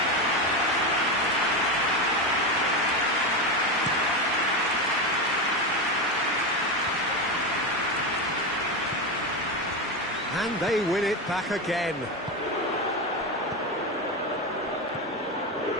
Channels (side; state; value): both; normal; correlation 0.15